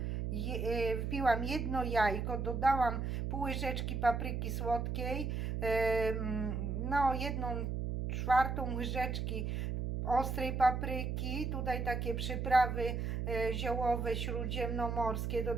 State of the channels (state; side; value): noise; right; hum, 2 dB below the sound